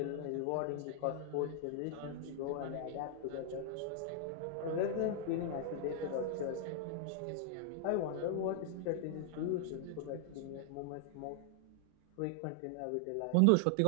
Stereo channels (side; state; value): both; different; correlation 0.00